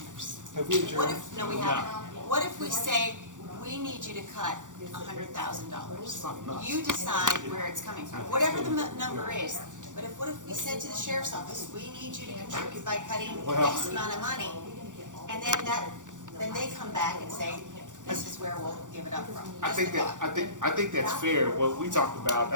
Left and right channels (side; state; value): left; late; 0.86 ms